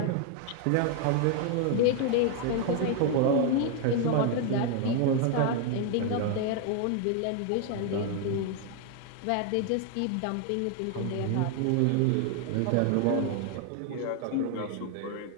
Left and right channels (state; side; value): different; both; correlation 0.00